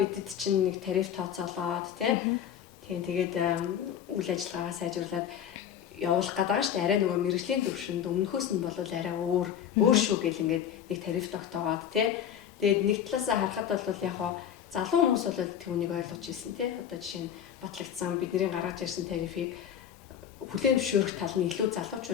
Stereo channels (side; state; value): right; quieter; 9.2 dB